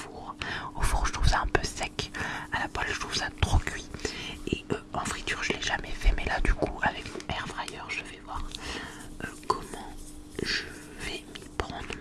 Au four je trouve ça un peu sec, à la poêle je trouve ça trop cuit. Et en friture je l'ai jamais fait, mais là du coup avec mon air fryer je vais voir comment je vais m'y prendre,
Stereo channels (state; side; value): identical; both; correlation 1.00